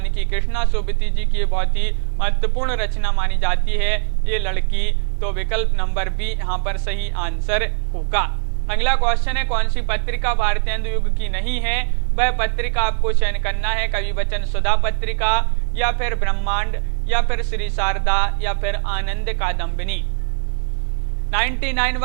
कि कृष्णा सोबती जी की बहुत ही महत्वपूर्ण रचना मानी जाती है ये लड़की। तो विकल्प नंबर बी यहाँ पर सही आंसर होगा। अगला क्वेश्चन है कौन सी पत्रिका भारतेंदु युग की नहीं है? वह पत्रिका आपको चयन करना है। कवि वचन सुधा पत्रिका या फिर ब्रह्मांड या फिर श्री शारदा या फिर आनंद कादम्बिनी?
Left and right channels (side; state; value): left; silent; 56 dB below the other